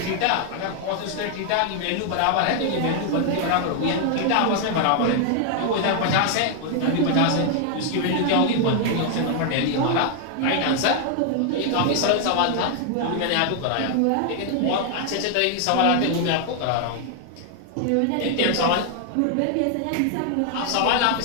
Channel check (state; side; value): different; both; correlation 0.00